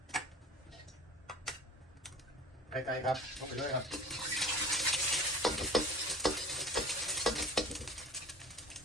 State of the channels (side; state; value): both; normal; correlation 0.40